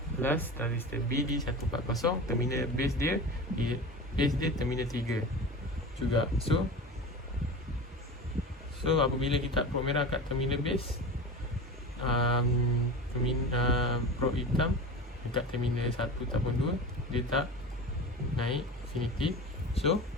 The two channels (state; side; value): normal; both; correlation 0.30